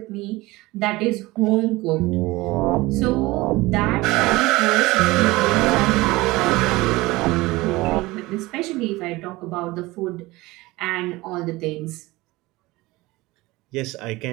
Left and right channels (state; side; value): quieter; left; 20.6 dB